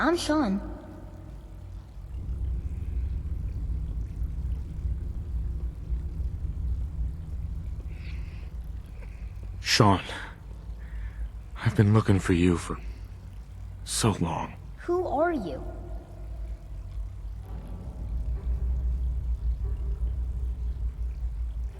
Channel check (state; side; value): identical; both; correlation 1.00